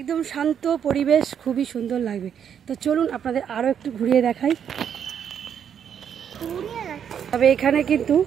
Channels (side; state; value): left; quieter; 8.4 dB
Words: শান্ত পরিবেশ, খুবই সুন্দর লাগবে। তো চলুন আপনাদের আরও একটু ঘুরিয়ে দেখাই। তবে এখানে কিন্তু